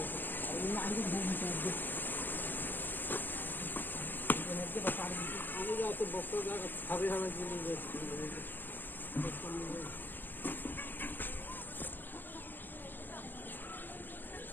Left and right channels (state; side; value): late; right; 0.089 ms